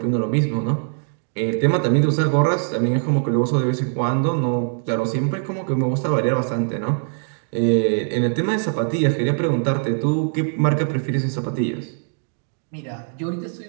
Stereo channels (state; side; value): silent; left; digital silence